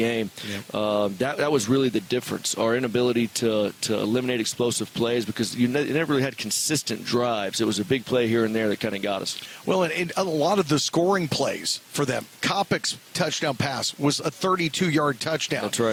Yep. That was really the difference, our inability to eliminate explosive plays, because you never really had consistent drives. It was a big play here and there that kind of got us. Well, and a lot of the scoring plays for them, Kopic's touchdown pass was a 32-yard touchdown. That's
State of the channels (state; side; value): identical; both; correlation 1.00